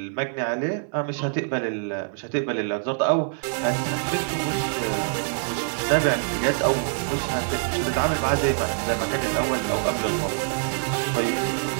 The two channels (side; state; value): left; silent; 57 dB below the other